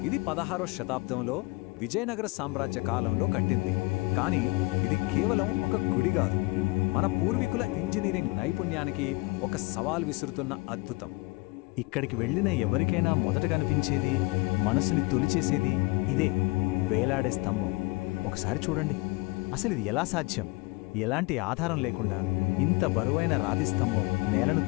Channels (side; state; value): right; quieter; 24.8 dB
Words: ఇది 16వ శతాబ్దంలో విజయనగర సామ్రాజ్య కాలంలో కట్టింది. కానీ ఇది కేవలం ఒక గుడి కాదు, మన పూర్వీకుల ఇంజనీరింగ్ నైపుణ్యానికి ఒక సవాల్ విసురుతున్న అద్భుతం. ఇక్కడికి వెళ్ళిన ఎవరికైనా మొదట కనిపించేది, మనసుని తొలిచేసేది ఇదే, వేలాడే స్తంభం. ఒకసారి చూడండి, అసలు ఇది ఎలా సాధ్యం? ఎలాంటి ఆధారం లేకుండా ఇంత బరువైన రాతి స్తంభం నేలను